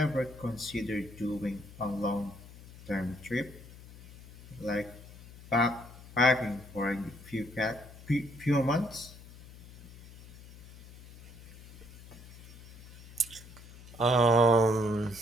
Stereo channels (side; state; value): left; noise; hum, 18 dB below the sound